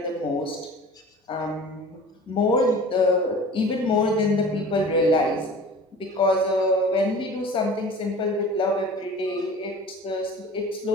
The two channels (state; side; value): normal; both; correlation 0.41